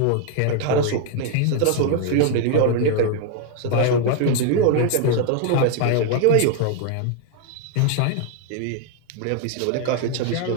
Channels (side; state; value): both; different; correlation 0.00